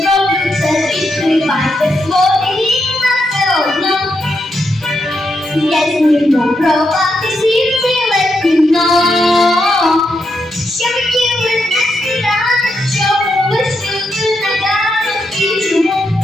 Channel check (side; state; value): both; normal; correlation 0.82